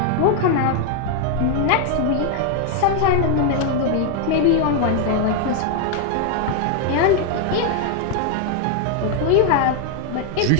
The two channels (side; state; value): both; different; correlation 0.00